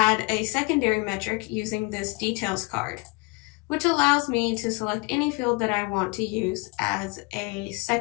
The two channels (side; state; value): right; quieter; 28.4 dB